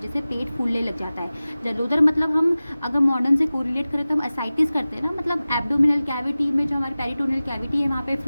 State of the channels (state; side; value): inverted; both; correlation -0.97